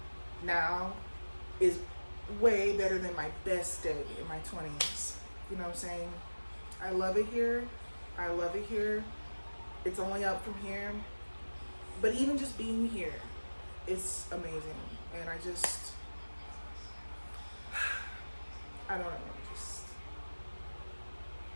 now is way better than my best day in my 20s. You know what I'm saying? I love it here. I love it here. It's only up from here. But even just being here, it's amazing. And I don't know.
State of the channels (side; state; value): both; inverted; correlation -1.00